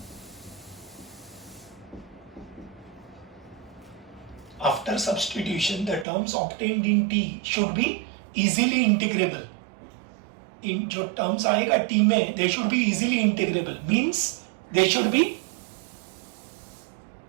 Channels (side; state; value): left; drops out; at 6.1 s